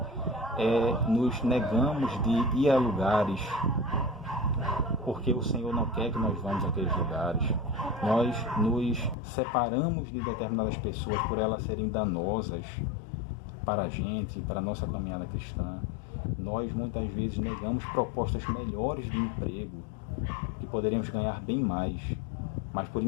nos negamos de ir a lugares porque o Senhor não quer que nós vamos àqueles lugares. Nós nos separamos de determinadas pessoas por elas serem danosas para a gente, para a nossa caminhada cristã. Nós muitas vezes negamos propostas melhores de emprego, que poderíamos ganhar bem mais, mas por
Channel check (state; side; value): drops out; right; at 9.2 s